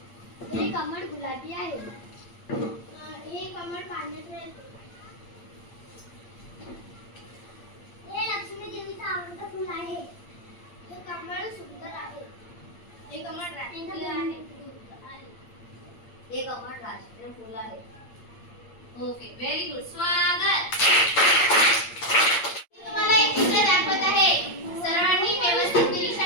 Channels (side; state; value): right; late; 8.7 ms